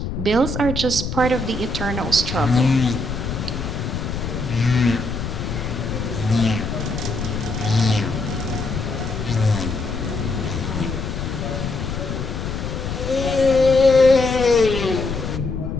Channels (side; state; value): left; noise; rumble, 4 dB below the sound